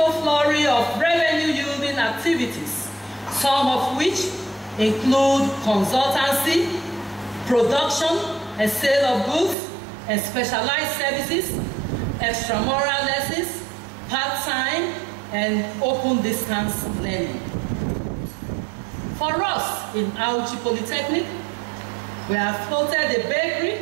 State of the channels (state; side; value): drops out; left; at 9.6 s